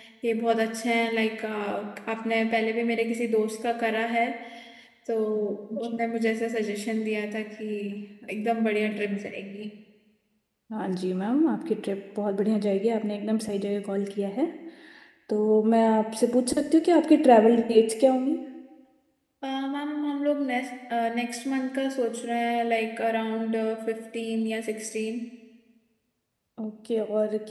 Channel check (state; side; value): identical; both; correlation 1.00